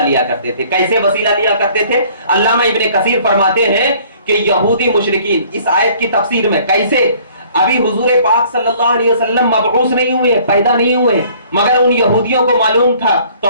لیا کرتے تھے۔ کیسے وسیلہ لیا کرتے تھے؟ علامہ ابن کثیر فرماتے ہیں کہ یہودی مشرکین اس آیت کی تفسیر میں کیسے، ابھی حضور پاک صلی اللہ علیہ وسلم مبعوث نہیں ہوئے، پیدا نہیں ہوئے، مگر ان یہودیوں کو معلوم تھا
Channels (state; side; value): inverted; both; correlation -0.55